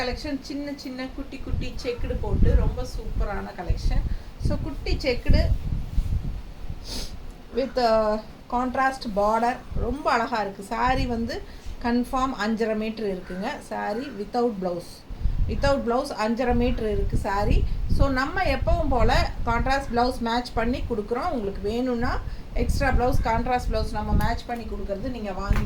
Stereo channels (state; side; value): identical; both; correlation 1.00